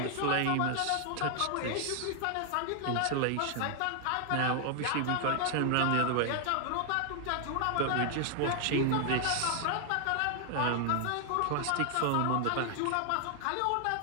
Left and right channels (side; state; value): both; different; correlation 0.00